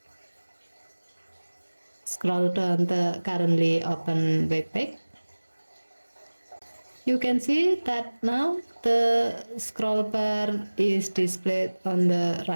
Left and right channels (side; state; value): both; inverted; correlation -1.00